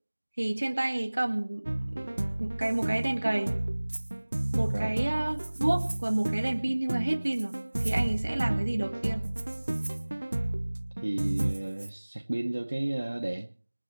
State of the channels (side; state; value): both; inverted; correlation -1.00